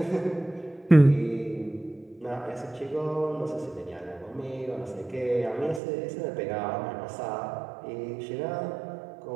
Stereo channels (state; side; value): drops out; left; at 5.8 s